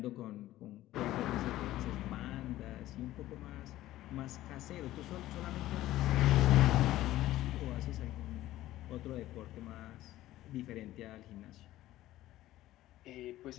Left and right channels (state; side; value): quieter; right; 15.1 dB